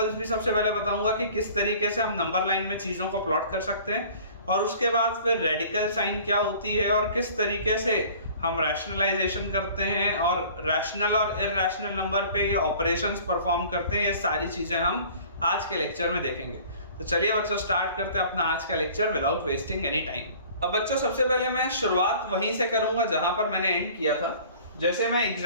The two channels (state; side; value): inverted; both; correlation -0.48